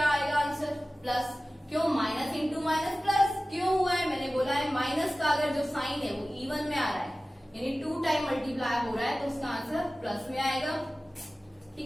आएगा आंसर? प्लस। क्यों? Minus into minus plus. क्यों हुआ है? मैंने बोला है माइनस का अगर जो साइन है वो इवन में आ रहा है, यानी 2 टाइम मल्टीप्लाई हो रहा है, तो उसका आंसर प्लस में आएगा,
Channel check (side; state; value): both; normal; correlation 0.97